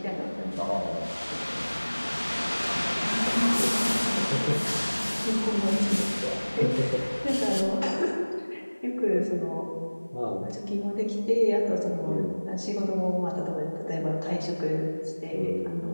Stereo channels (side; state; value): both; inverted; correlation -1.00